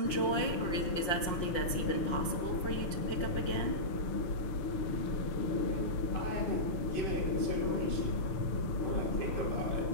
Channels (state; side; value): late; right; 5.6 ms